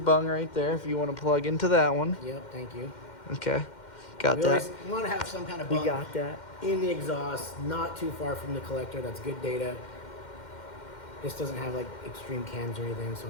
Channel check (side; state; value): right; late; 2.1 ms